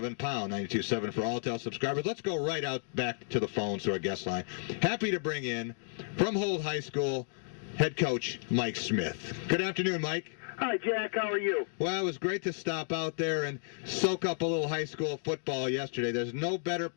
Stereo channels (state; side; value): silent; right; digital silence